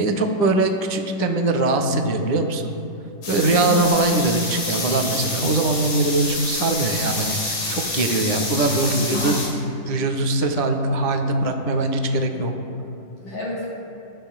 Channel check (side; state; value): right; late; 10 ms